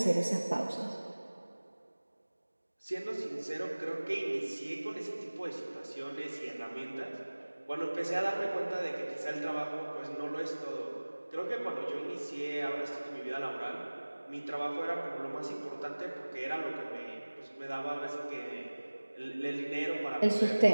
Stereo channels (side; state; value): both; inverted; correlation -1.00